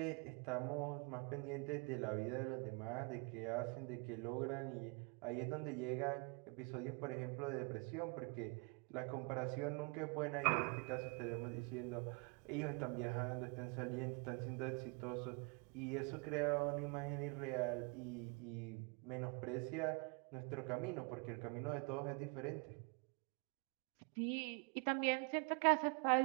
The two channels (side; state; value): left; quieter; 32.7 dB